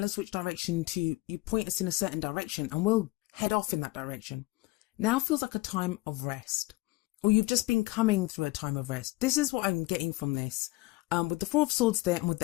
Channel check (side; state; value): right; quieter; 21.0 dB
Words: us which direction you point us in a certain direction, and we'll head off in that direction. Now feels like a time of rest, or you've just been coming through a time of rest. This is what I'm getting from this. With the Four of Swords there, and with